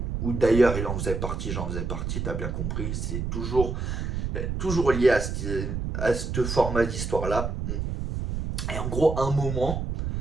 Ou d'ailleurs il en faisait partie, j'en faisais partie, t'as bien compris. C'est toujours lié à ce format d'histoire-là. Et en gros, un moment,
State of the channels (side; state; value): right; noise; rumble, 3 dB below the sound